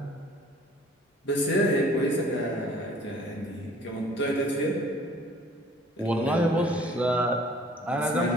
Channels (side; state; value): both; normal; correlation 0.53